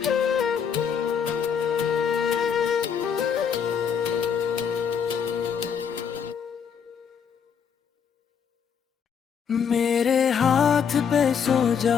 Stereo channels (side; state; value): right; quieter; 7.2 dB